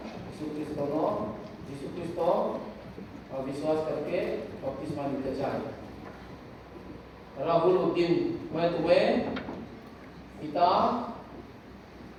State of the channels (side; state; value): both; identical; correlation 1.00